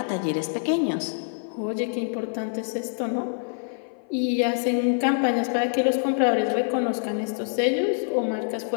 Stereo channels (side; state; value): right; silent; 55 dB below the other